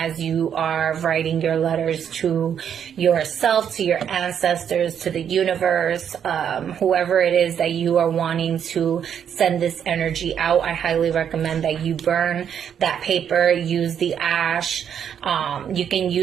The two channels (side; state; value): left; quieter; 8.5 dB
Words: you are writing your letters to yourself, to your ancestors, to the universe, whoever it is that you are wanting to send this energy out. I highly recommend that you burn that paper, use the ash. You can